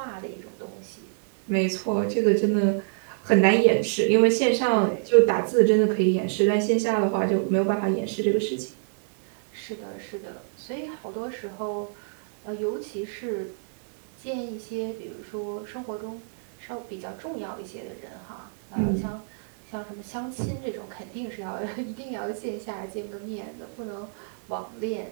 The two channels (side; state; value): left; silent; digital silence